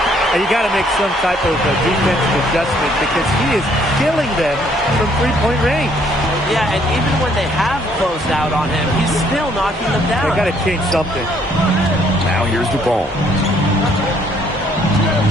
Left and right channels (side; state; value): both; normal; correlation 0.65